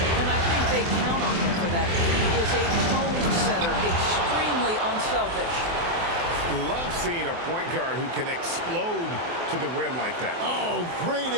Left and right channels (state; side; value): late; left; 24 ms